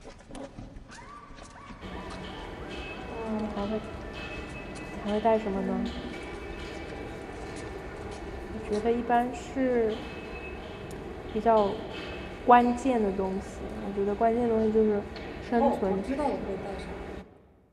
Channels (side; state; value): both; identical; correlation 1.00